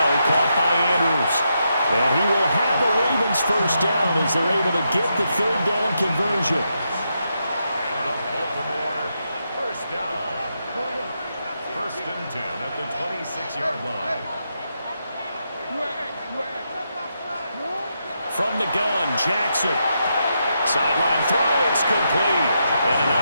caught by Andrews. And he will have a Ravens first down as they're able to get the third down conversion. And the Baltimore first down. First and 10 at the 26-yard line. From the gun, Jackson. Sideline throw, it's complete. And a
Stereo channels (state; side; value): inverted; both; correlation -0.83